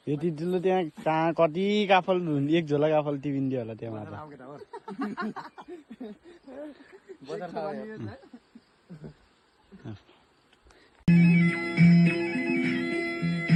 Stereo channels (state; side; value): identical; both; correlation 1.00